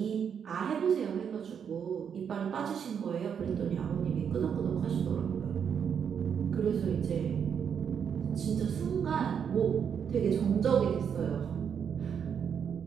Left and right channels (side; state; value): left; quieter; 7.5 dB